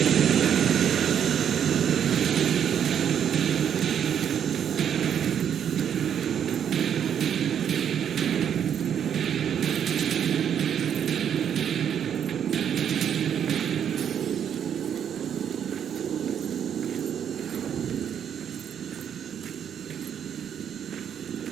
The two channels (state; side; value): quieter; left; 8.7 dB